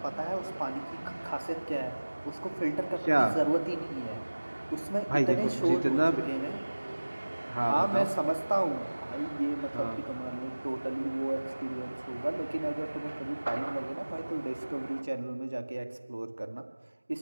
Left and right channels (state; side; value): inverted; both; correlation -1.00